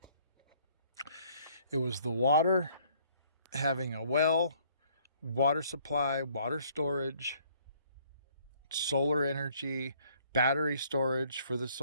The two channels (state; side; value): inverted; both; correlation -0.62